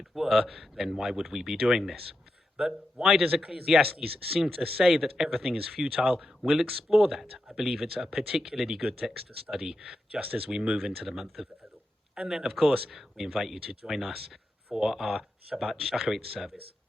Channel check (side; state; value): both; normal; correlation 0.88